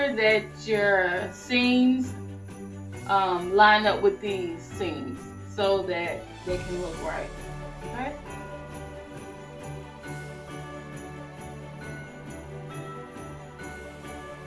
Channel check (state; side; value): identical; both; correlation 1.00